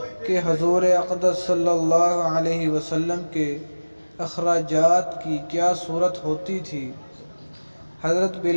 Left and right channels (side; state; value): both; inverted; correlation -1.00